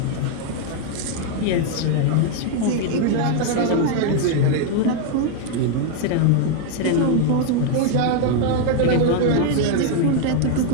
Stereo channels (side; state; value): both; different; correlation 0.00